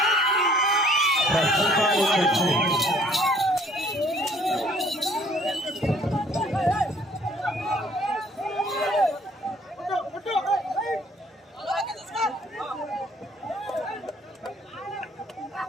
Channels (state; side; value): normal; both; correlation 0.58